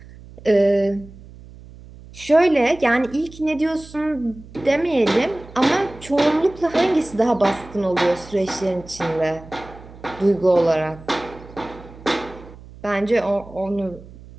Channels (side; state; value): right; noise; hum, 19 dB below the sound